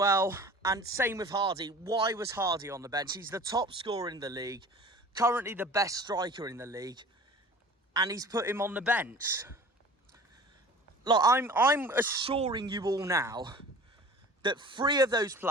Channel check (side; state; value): both; normal; correlation 0.42